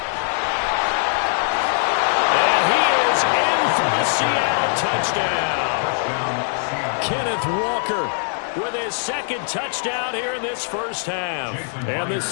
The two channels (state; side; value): silent; right; digital silence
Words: And he is in for the Seattle touchdown. Kenneth Walker with his 2nd touchdown here in this first half. And the